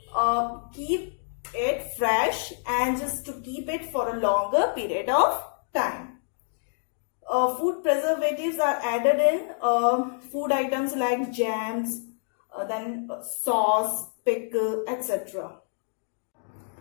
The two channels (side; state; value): right; silent; digital silence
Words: keep it fresh and just to keep it for a longer period of time. Food preservatives are added in food items like jams, then sauce, pickle, etc.